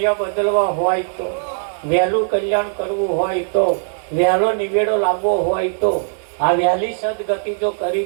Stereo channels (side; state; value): left; silent; digital silence